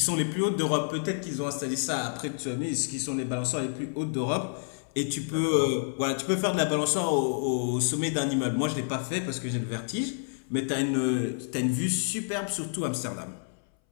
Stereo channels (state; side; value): silent; right; 59 dB below the other